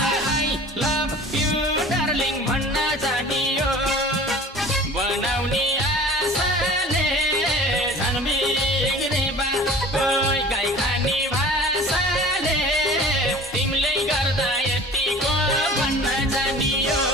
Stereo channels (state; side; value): normal; both; correlation 0.43